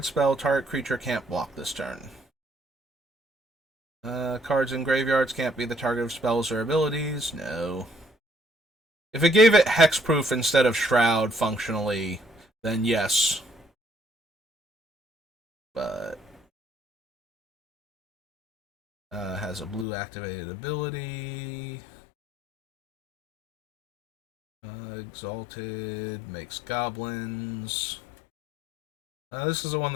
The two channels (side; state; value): right; drops out; at 19.9 s